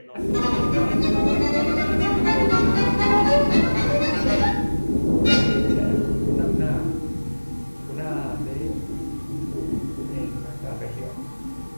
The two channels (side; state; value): both; inverted; correlation -1.00